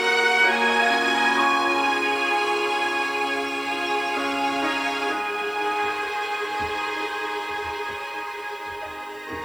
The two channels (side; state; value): right; noise; hiss, 27 dB below the sound